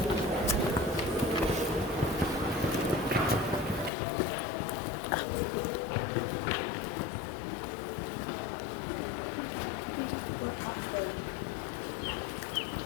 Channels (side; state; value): right; drops out; at 3.9 s